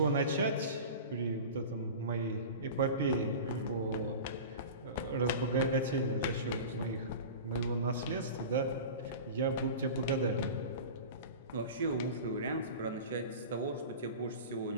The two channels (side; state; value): both; inverted; correlation -0.33